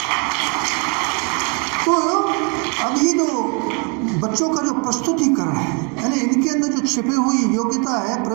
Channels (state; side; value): quieter; left; 31.6 dB